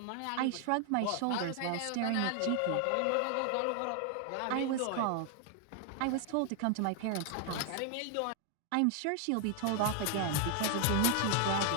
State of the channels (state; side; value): different; both; correlation 0.00